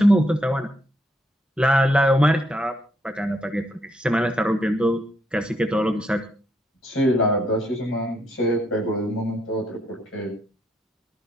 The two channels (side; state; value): both; normal; correlation 0.75